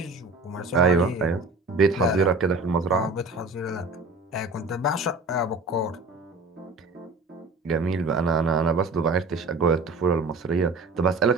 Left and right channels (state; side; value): quieter; left; 3.3 dB